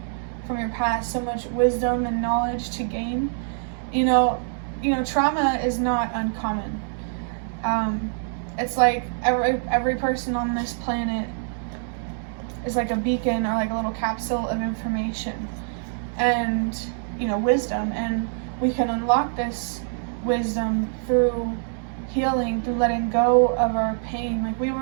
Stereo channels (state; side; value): silent; left; digital silence